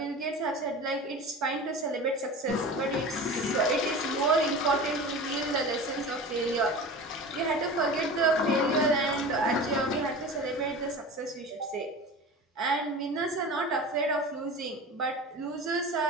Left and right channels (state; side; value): normal; both; correlation 0.34